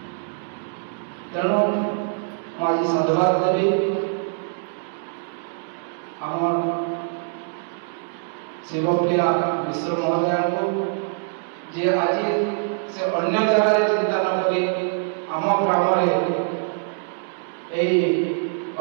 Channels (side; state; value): left; silent; digital silence